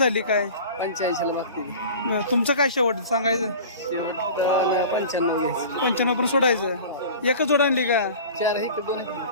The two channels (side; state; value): both; inverted; correlation -0.38